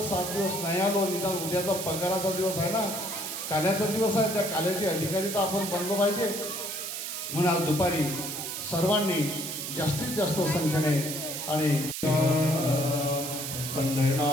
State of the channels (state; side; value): noise; right; hiss, 5 dB below the sound